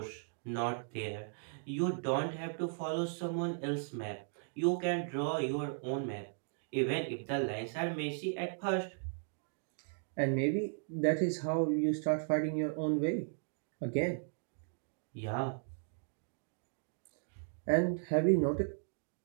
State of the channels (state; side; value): silent; left; digital silence